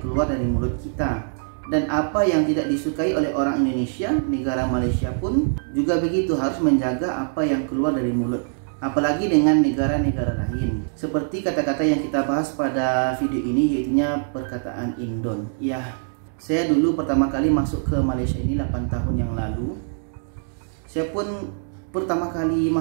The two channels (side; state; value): left; silent; digital silence